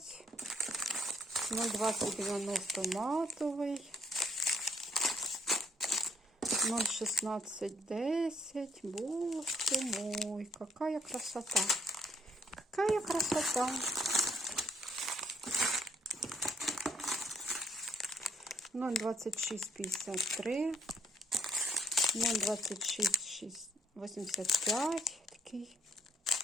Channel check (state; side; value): normal; both; correlation 0.68